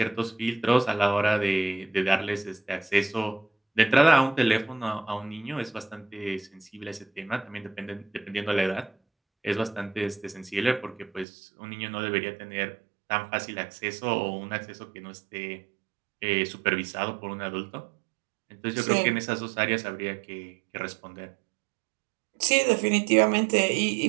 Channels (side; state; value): left; drops out; at 11.2 s